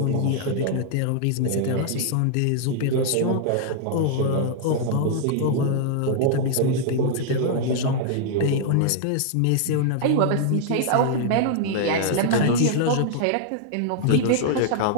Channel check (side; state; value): both; different; correlation -0.01